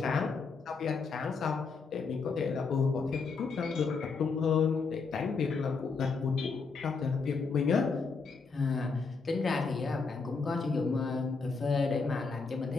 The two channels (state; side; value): quieter; right; 4.6 dB